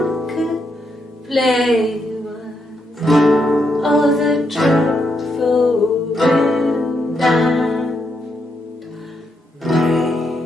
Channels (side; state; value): both; normal; correlation 0.80